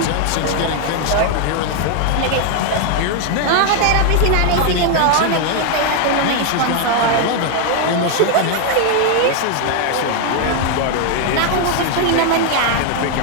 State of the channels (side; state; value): both; different; correlation 0.00